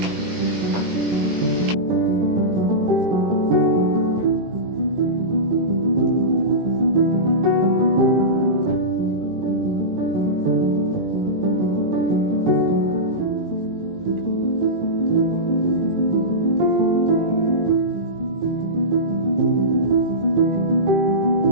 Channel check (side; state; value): left; late; 18 ms